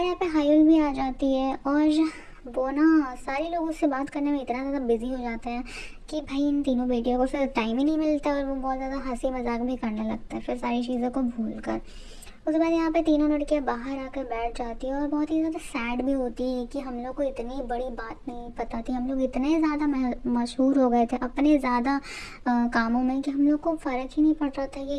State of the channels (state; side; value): identical; both; correlation 1.00